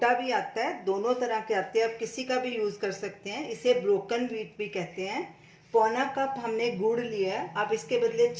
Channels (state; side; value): identical; both; correlation 1.00